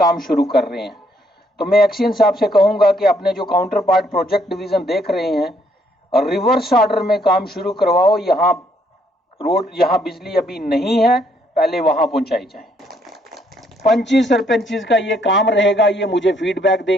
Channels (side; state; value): both; normal; correlation 0.69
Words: शुरू कर रहे हैं। तो मैं एक्शन साहब से कहूंगा कि अपने जो काउंटर पार्ट प्रोजेक्ट डिवीजन देख रहे हैं और रिवर्स ऑर्डर में काम शुरू करवाओ। यहाँ रोड, यहाँ बिजली अभी नहीं है, पहले वहां पहुंचाई जाए। पंचिस सरपंचिस का ये काम रहेगा, ये मुझे फीडबैक